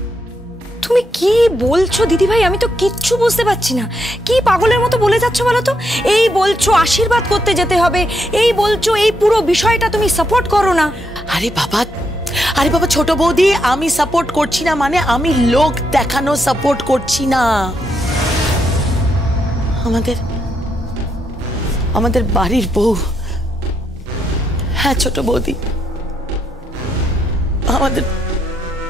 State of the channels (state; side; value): normal; both; correlation 0.79